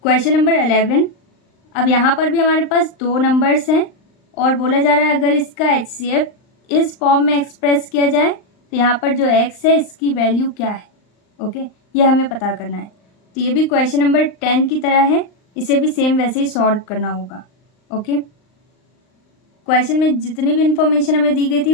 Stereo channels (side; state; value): right; late; 39 ms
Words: Question number 11. अब यहाँ पर भी हमारे पास दो numbers हैं और बोला जा रहा है अगर इसका HCF इस फॉर्म में एक्सप्रेस किया जाए तो यहाँ पर जो x है इसकी वैल्यू क्या है. ओके, ये हमें पता करना है. तो ये भी क्वेश्चन नंबर 10 की तरह है, इसे भी सेम वैसे ही सॉल्व करना होगा. ओके, क्वेश्चन में जितनी भी इंफॉर्मेशन हमें दी गई